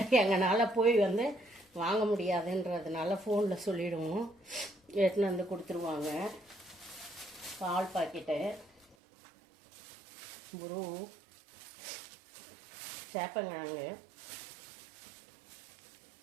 எங்களால் போய் வாங்க முடியாதுன்றதுனால ஃபோனில் சொல்லிவிடுவோம். எடுத்துன்னு கொடுத்துருவாங்க. பால் பாக்கெட்டு, குரு, சேப்பங்கிழங்கு.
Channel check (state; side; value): drops out; left; at 9.0 s